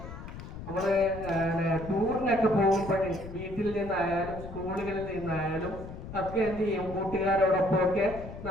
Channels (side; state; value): left; noise; rumble, 11 dB below the sound